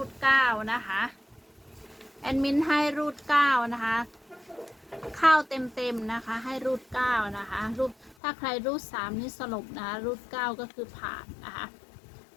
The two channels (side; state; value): right; drops out; at 8.2 s